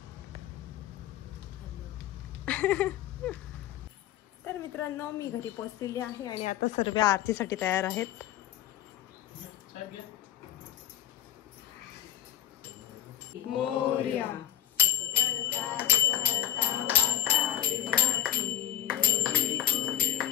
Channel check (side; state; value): right; quieter; 11.9 dB